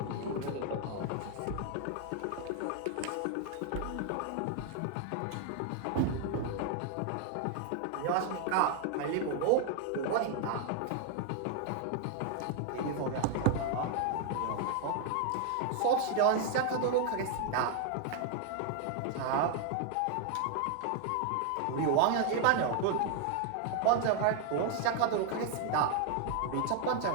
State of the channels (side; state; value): both; different; correlation 0.00